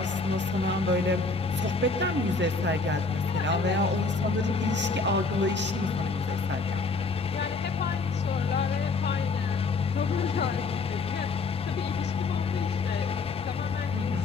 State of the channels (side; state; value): right; quieter; 4.0 dB